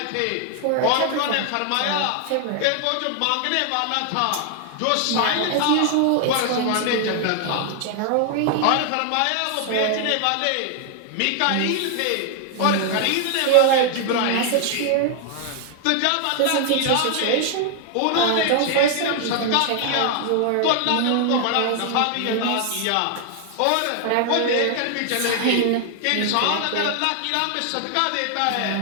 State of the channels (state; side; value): different; both; correlation 0.00